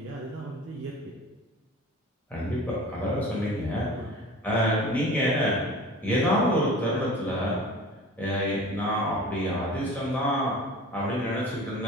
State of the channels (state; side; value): normal; both; correlation 0.40